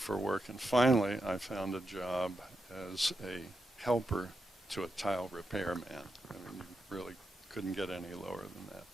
work, and finally I found a job as a helper to a tile repairman. I mean, you really couldn't get any lower than that.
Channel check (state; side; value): normal; both; correlation 0.86